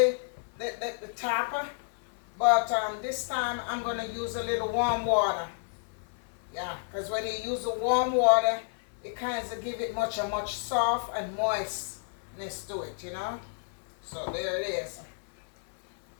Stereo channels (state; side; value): silent; right; 55 dB below the other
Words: tap, but this time I'm going to use a little warm water. Yeah, because when you use the warm water, it kind of give it a much soft and moistness to it, you know. So there it is.